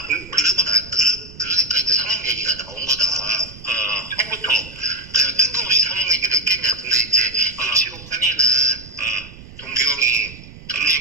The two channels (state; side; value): noise; right; rumble, 17 dB below the sound